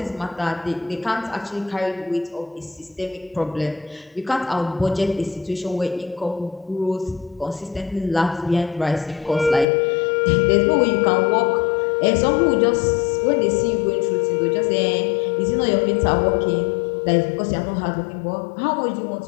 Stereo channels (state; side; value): drops out; right; at 9.7 s